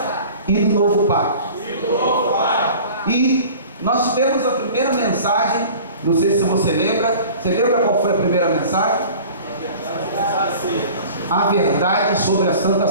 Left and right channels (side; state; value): both; inverted; correlation -0.43